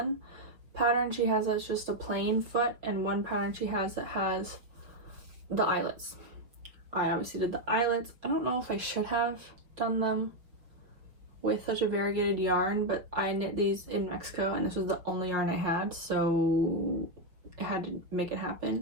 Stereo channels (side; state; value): left; late; 5.5 ms